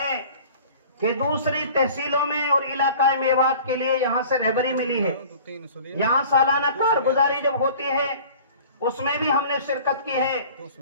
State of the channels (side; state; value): both; inverted; correlation -0.46